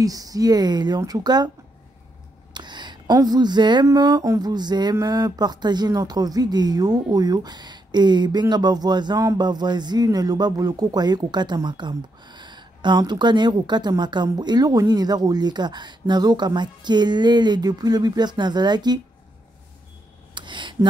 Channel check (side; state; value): both; normal; correlation 0.80